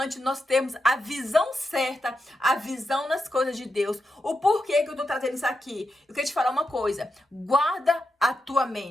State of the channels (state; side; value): normal; both; correlation 0.86